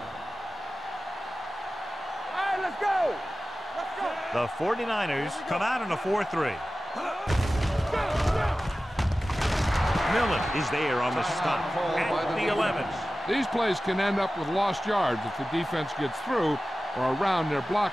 Let's go! The 49ers come out in a 4-3. Millen is there on the stop at the 11. These plays can end up with lost yards if the defense gets through or around their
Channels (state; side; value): normal; both; correlation 0.95